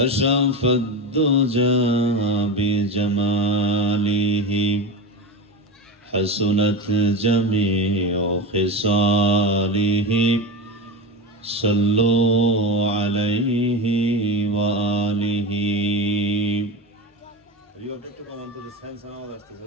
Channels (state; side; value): normal; both; correlation 0.22